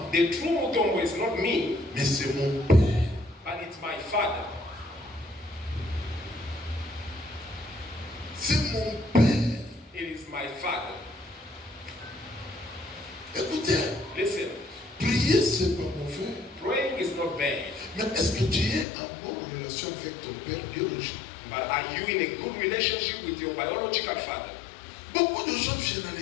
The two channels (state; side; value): drops out; right; at 18.9 s